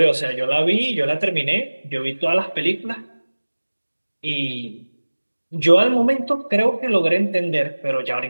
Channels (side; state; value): both; inverted; correlation -1.00